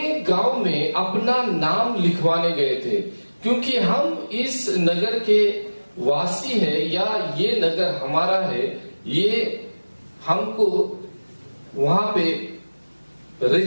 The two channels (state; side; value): inverted; both; correlation -1.00